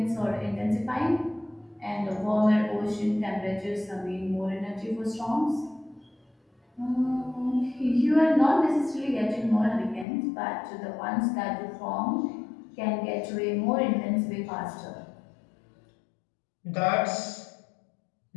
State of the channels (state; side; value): drops out; right; at 10.1 s